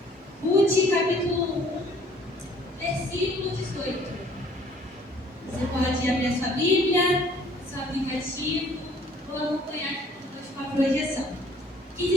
Ruth, capítulo 1, versículo 18. Você pode abrir a sua Bíblia, seu aplicativo, ou acompanhar aqui conosco a projeção. Que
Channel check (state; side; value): normal; both; correlation 0.57